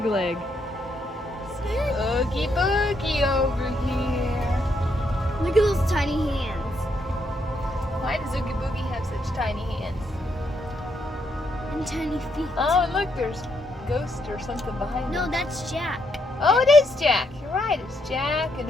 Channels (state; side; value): normal; both; correlation 0.77